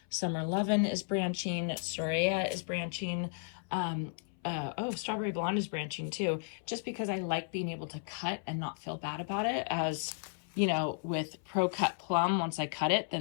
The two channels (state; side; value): silent; right; 55 dB below the other